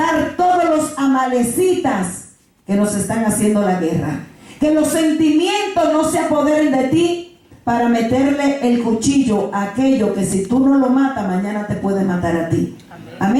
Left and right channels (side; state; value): both; identical; correlation 1.00